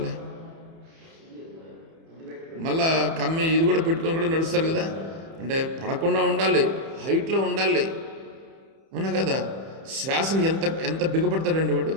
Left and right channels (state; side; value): late; left; 31 ms